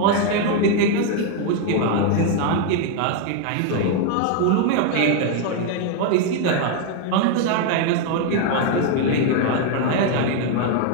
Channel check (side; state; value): both; different; correlation 0.01